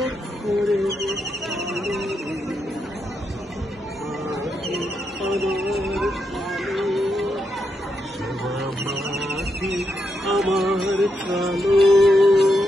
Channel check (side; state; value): both; normal; correlation 0.82